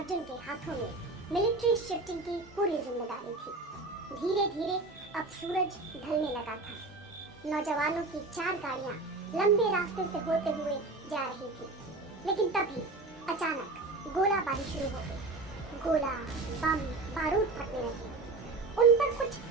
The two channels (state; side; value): quieter; left; 3.4 dB